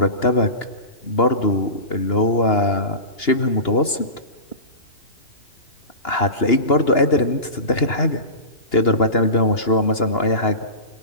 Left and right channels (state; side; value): late; right; 2.9 ms